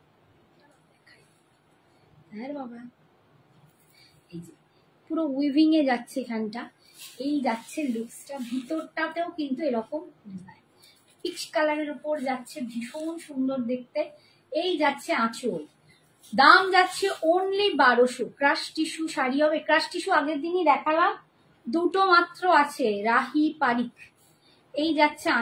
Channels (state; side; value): identical; both; correlation 1.00